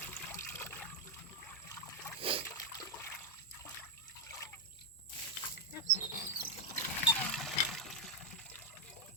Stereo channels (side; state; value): both; normal; correlation -0.02